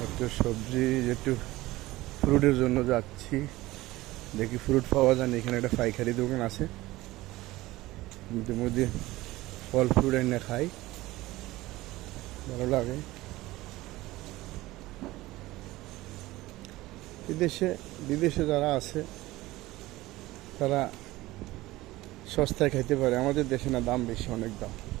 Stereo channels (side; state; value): left; quieter; 18.3 dB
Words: একটু সবজি, একটু ফ্রুটের জন্য যাচ্ছি, দেখি ফ্রুট পাওয়া যায় না। এখানে একটা পাইকারি দোকান আছে, মধ্যে ফল ফ্রুট এনে খাই, ভালো লাগে। বিদেশে বিদেশে যারা আছে তারা সস্তায় খাইতে পারে, আমাদের দেশে না, দাম বেশি, অনেক দাম।